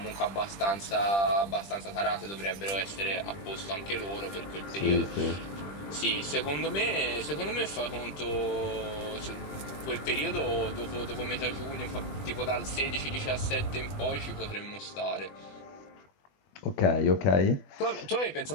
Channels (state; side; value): late; right; 20 ms